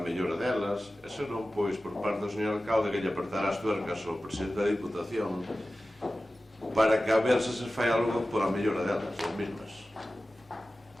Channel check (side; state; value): both; normal; correlation 0.95